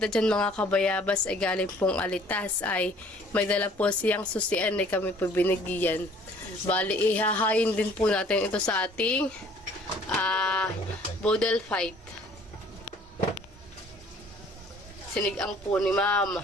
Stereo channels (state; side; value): normal; both; correlation 0.55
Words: dyan mga kabayabas ay galing pong Alitas ay may dala po siyang susian ay kami po binigyan. Bali ihahayin din po natin ito sa ating bodel fight. Sinigang po ni Mama.